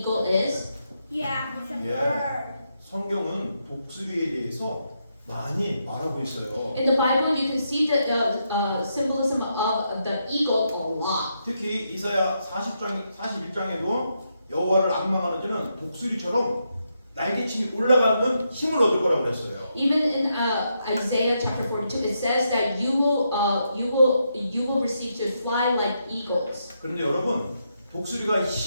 is? Yeah, it's a Yeah. bird. 성경은 독수리에 대해서 많이 말하고 있어요. In the Bible, you can see the symbolism of the eagle a lot. 특히 이사야 41장에도 여호와를 악망하는 자는 독수리처럼 날개침이 올라가는 힘을 얻을 거라고 그랬어요. Even in Isaiah chapter 42, it says that you will receive to fly like eagles. 그런데 여러분 독수리가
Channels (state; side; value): inverted; both; correlation -0.81